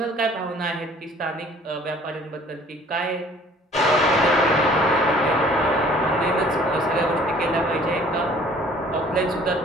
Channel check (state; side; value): normal; both; correlation 0.53